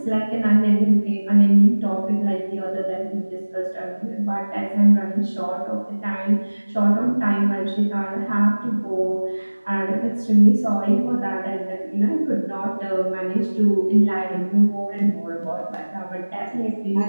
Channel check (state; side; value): inverted; both; correlation -1.00